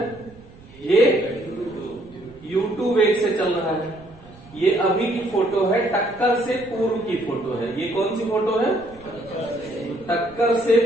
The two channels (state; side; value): noise; right; rumble, 23 dB below the sound